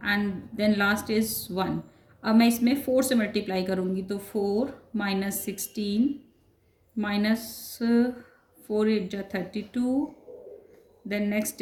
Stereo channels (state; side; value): identical; both; correlation 1.00